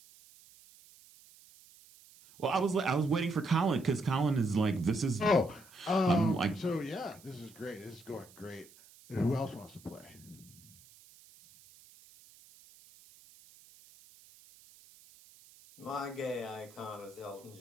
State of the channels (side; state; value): right; noise; hiss, 24 dB below the sound